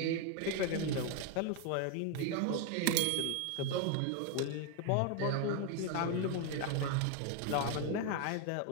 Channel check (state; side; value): different; both; correlation 0.01